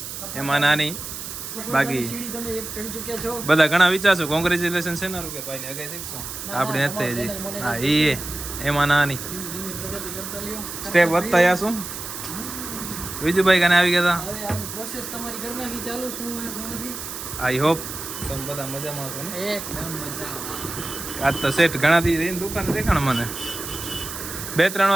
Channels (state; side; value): noise; right; hiss, 8 dB below the sound